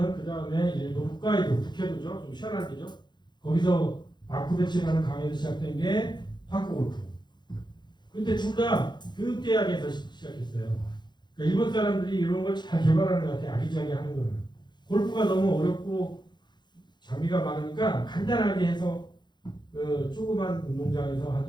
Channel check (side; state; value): right; late; 0.21 ms